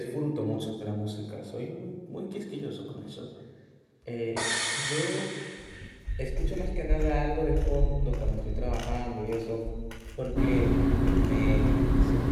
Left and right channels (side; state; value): both; identical; correlation 1.00